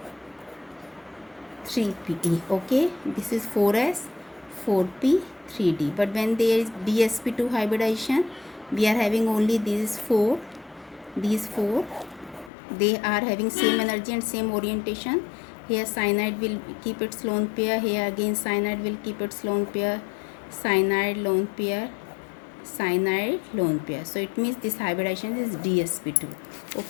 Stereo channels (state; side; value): drops out; right; at 12.5 s